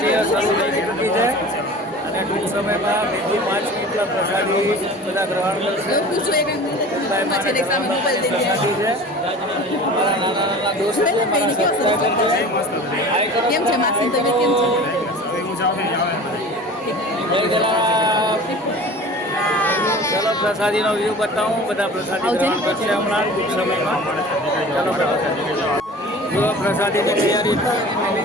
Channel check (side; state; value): both; normal; correlation 0.40